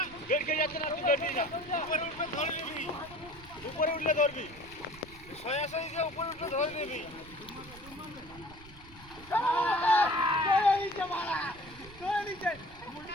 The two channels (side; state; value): right; noise; rumble, 20 dB below the sound